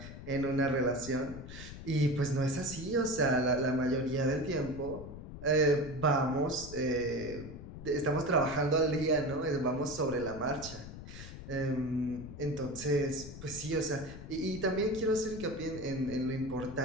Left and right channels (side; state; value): left; noise; rumble, 12 dB below the sound